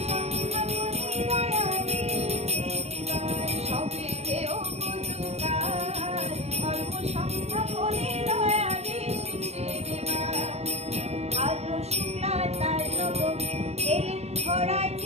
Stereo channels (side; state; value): left; late; 0.31 ms